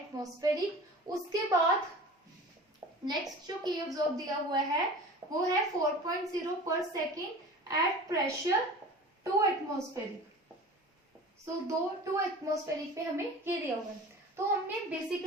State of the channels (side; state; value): both; normal; correlation 0.39